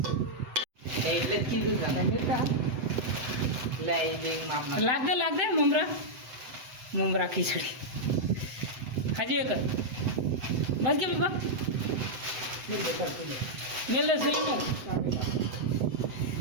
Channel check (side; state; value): left; late; 7.9 ms